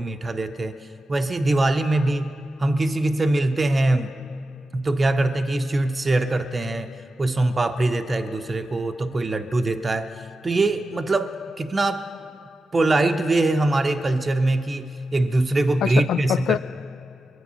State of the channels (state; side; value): normal; both; correlation 0.91